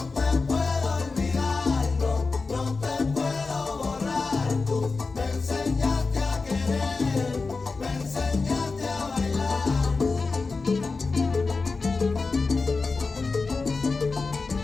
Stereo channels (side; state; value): right; quieter; 4.1 dB